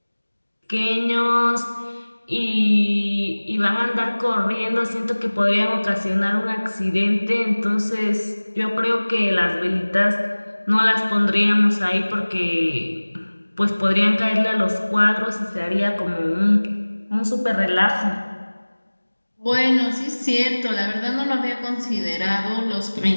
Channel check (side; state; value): both; inverted; correlation -1.00